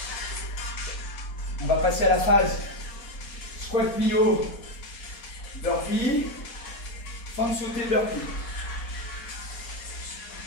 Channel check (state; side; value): late; right; 4.2 ms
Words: On va passer à la phase squat plio, burpee, fente sautée, burpee.